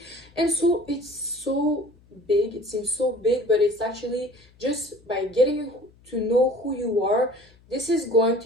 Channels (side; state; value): left; noise; hum, 28 dB below the sound